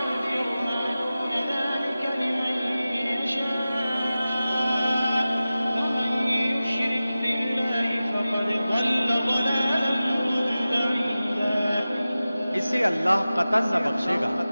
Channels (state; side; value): inverted; both; correlation -0.95